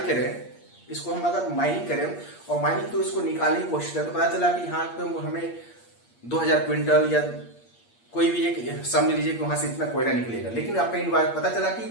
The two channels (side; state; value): right; late; 8.6 ms